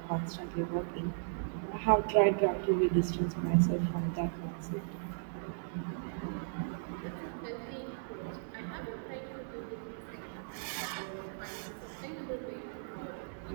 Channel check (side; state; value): left; silent; digital silence